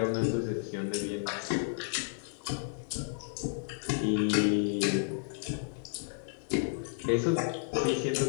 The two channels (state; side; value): silent; right; digital silence